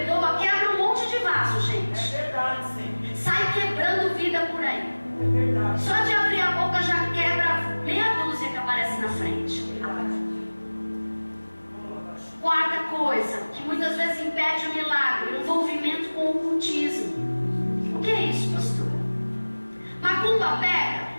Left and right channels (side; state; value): both; inverted; correlation -1.00